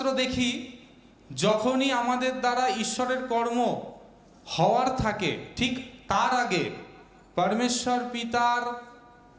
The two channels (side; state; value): both; identical; correlation 1.00